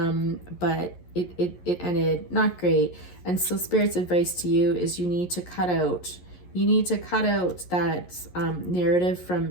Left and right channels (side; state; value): right; late; 11 ms